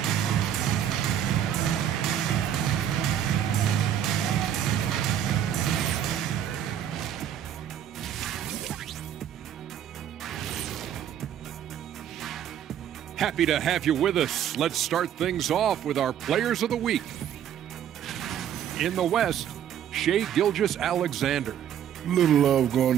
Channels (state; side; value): quieter; left; 9.9 dB